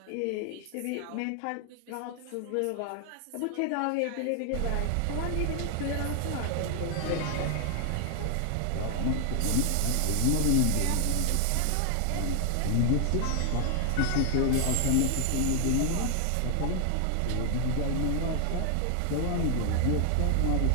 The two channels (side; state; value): both; different; correlation 0.00